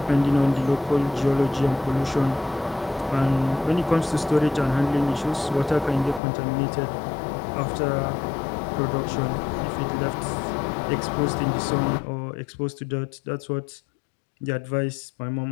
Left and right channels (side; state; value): right; drops out; at 6.2 s